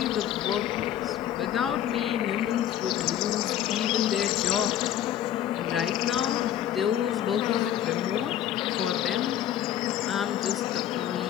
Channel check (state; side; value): quieter; right; 11.1 dB